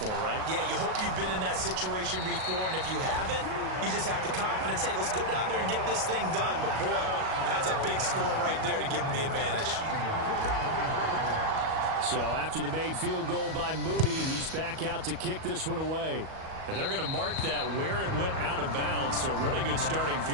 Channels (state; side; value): late; left; 38 ms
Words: right? Yeah, you hope you've been in that situation before, and if you haven't, you just have the confidence, hey, let's go down there and get this thing done. But boy, that's a big score right there to give them the advantage. So after the made field goal by Moody, he's back out to kick this one away. And they're going to mark that where it went out of bounds. So really good starting